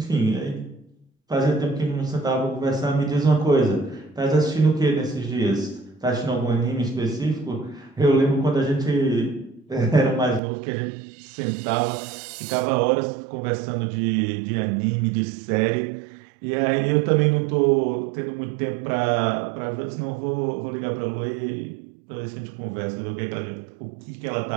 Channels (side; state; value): left; drops out; at 10.4 s